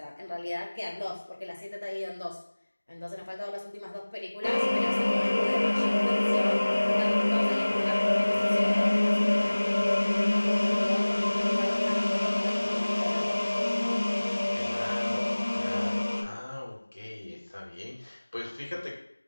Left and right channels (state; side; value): inverted; both; correlation -1.00